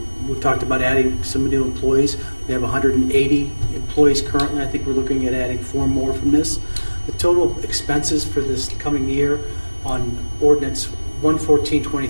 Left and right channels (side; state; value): both; inverted; correlation -1.00